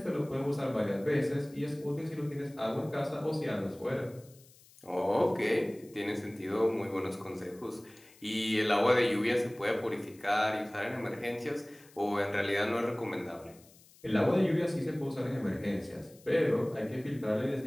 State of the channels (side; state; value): left; noise; hiss, 26 dB below the sound